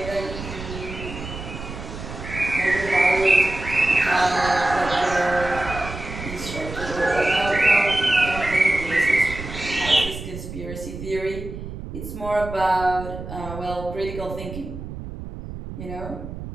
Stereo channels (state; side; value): noise; right; rumble, 10 dB below the sound